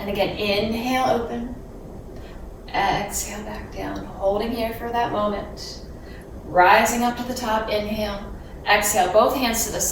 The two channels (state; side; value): identical; both; correlation 1.00